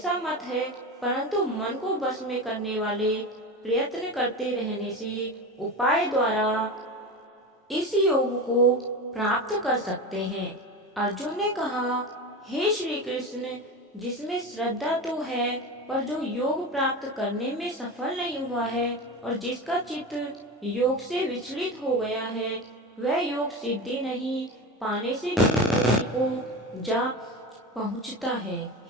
मत है। परंतु मन को बस में करने वाले प्रयत्न करते रहने से उपाय द्वारा इस योग को प्राप्त कर सकते हैं। अर्जुन ने कहा, हे श्री कृष्ण, जिसमें श्रद्धा तो है पर जो योग प्राप्त करने में सफल नहीं हुआ है और जिसका चित्त योग से विचलित हो गया है, वह योग सिद्धि नहीं पाने से भी को जा पहुंचता है।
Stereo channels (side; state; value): both; normal; correlation 0.25